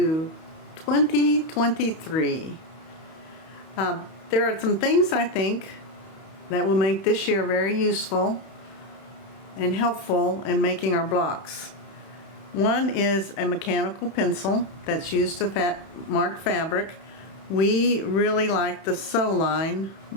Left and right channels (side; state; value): right; late; 31 ms